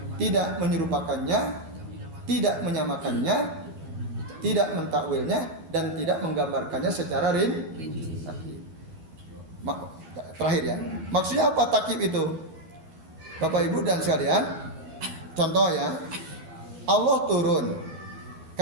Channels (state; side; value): late; left; 12 ms